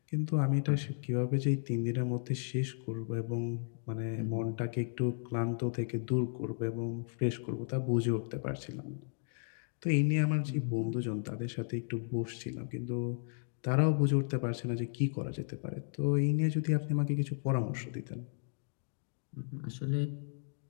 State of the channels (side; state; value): right; silent; digital silence